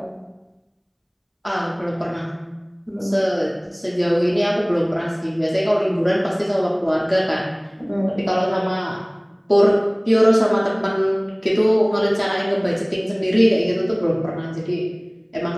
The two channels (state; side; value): identical; both; correlation 1.00